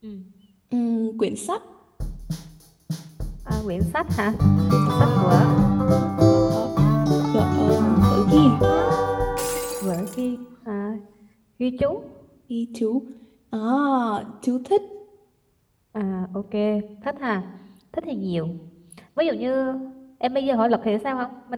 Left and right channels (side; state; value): both; identical; correlation 1.00